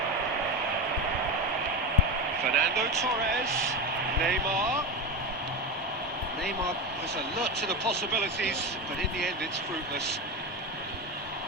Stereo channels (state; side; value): normal; both; correlation 0.19